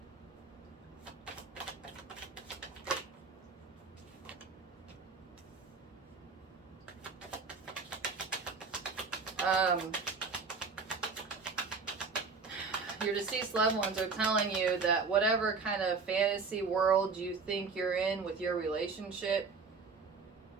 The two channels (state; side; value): quieter; left; 4.7 dB